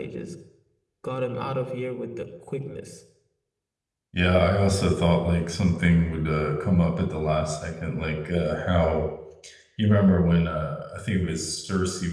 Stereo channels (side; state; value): both; identical; correlation 1.00